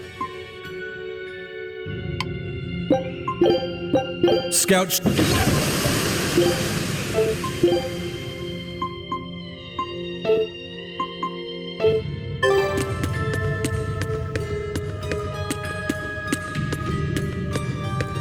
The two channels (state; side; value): identical; both; correlation 1.00